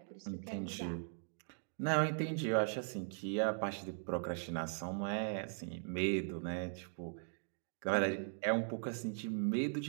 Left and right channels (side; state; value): left; silent; digital silence